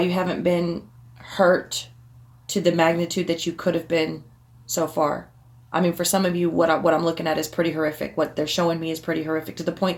you haven't been hurt to the magnitude that you could have been so far. I mean, for some of you, what I'm looking at is pretty horrific. What they're showing me is pretty horrific to the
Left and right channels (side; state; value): both; identical; correlation 1.00